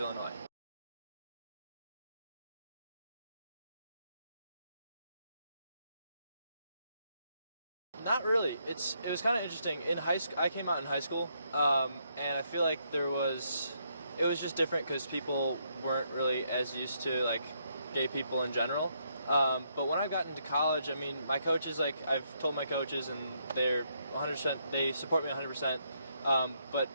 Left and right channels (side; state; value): both; inverted; correlation -0.75